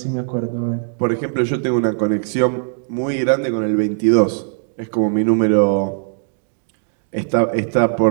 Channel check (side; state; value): left; silent; digital silence